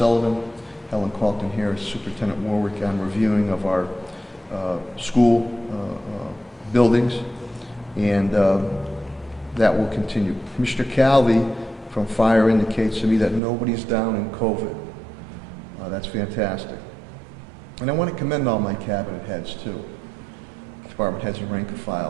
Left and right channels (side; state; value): left; drops out; at 13.4 s